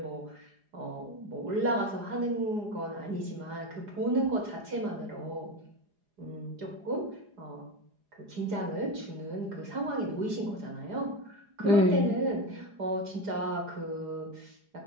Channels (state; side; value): late; left; 4.9 ms